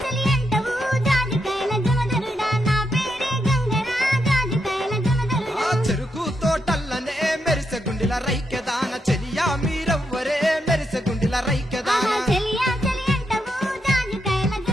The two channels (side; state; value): both; normal; correlation 0.82